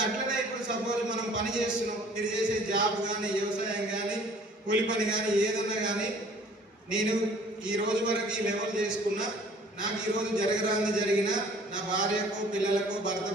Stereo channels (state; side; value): normal; both; correlation 0.53